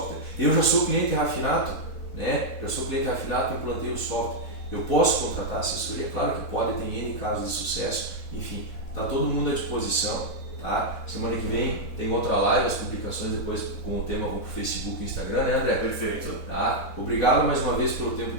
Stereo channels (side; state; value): both; normal; correlation -0.03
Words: Eu já sou cliente Rafinato, né? Já sou cliente afiliado, implantei o software. Eu posso contratar assessoria? Claro que pode, tem N casos de sucesso, enfim, está todo mundo à disposição. Tá? Semana que vem tem outra live, as publicações depois com o tema vão para o Facebook e Instagram, né, André? Perfeito. Tá? Obrigado mais uma vez pelo tempo